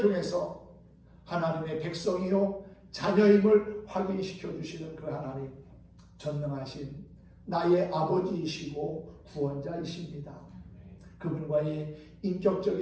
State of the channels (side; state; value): both; identical; correlation 1.00